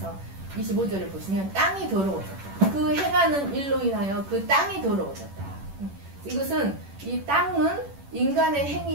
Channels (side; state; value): left; late; 10 ms